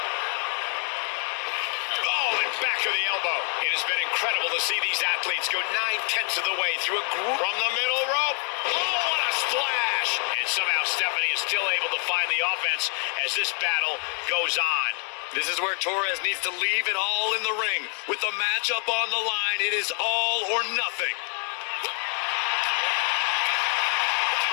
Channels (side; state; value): right; quieter; 37.1 dB